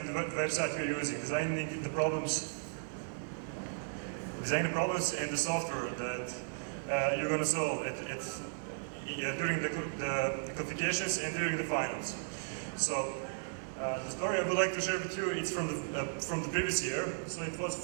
the website we're using, designing the problems and the software that you're going to solve during the qualifications and during the finals. So the story I would like to share with you, it's from the previous year. So it was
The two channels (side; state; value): left; silent; digital silence